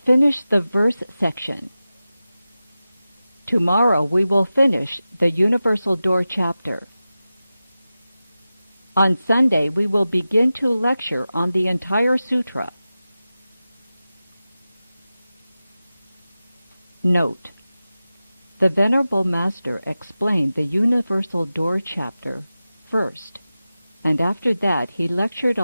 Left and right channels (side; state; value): both; inverted; correlation -0.94